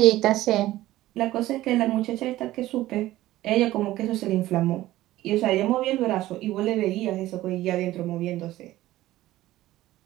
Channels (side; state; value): left; quieter; 15.8 dB